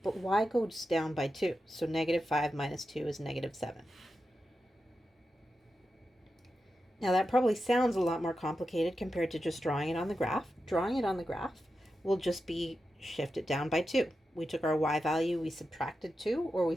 but y goes down by 2. So -5 minus 2 is -7. Now that probably sounds a lot more complicated compared to just drawing it on the graph. Drawing it on the graph will just be shift it down by 2. We took our y value, we subtracted 2, or we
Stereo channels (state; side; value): normal; both; correlation 0.90